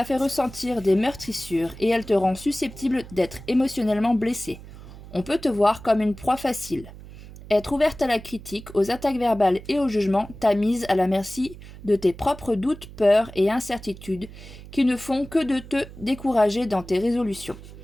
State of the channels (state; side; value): noise; right; hum, 16 dB below the sound